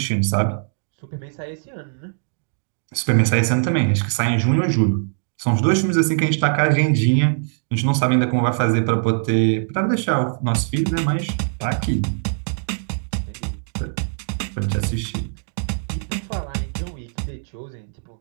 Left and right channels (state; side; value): silent; left; 64 dB below the other